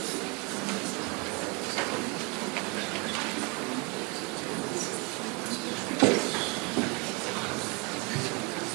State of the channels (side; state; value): left; quieter; 30.1 dB